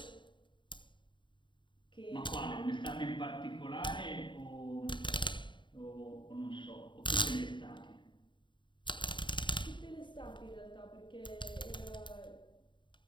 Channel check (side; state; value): right; late; 0.23 ms